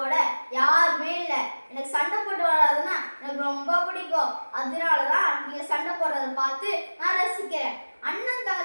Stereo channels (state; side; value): inverted; both; correlation -1.00